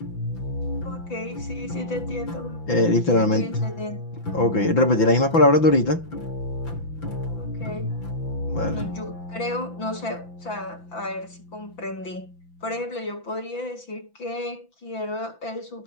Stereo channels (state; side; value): late; right; 5.9 ms